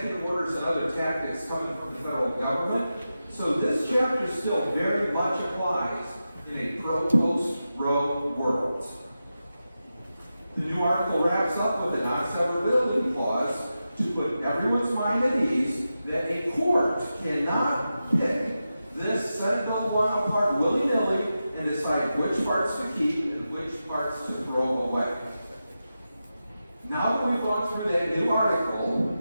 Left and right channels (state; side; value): inverted; both; correlation -0.91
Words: orders and other tactics coming from the federal government, so this chapter still very much applies in a pro-post Roe world. The new article wraps up with a non-severability clause to put everyone's mind at ease that a court cannot pick this Senate Bill 1 apart willy-nilly and decide which parts to keep and which parts to throw away. Now that we've gone through that new